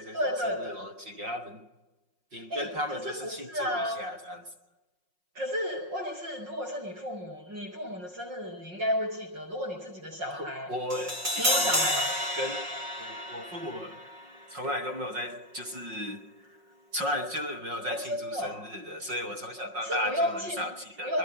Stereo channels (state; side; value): late; left; 5.5 ms